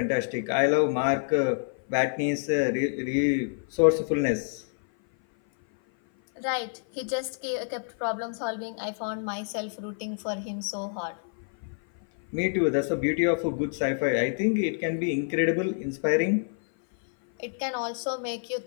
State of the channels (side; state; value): right; silent; 56 dB below the other